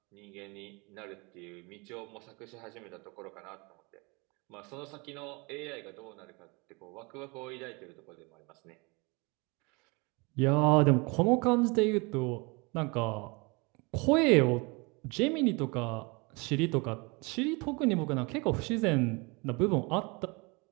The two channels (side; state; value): left; quieter; 28.0 dB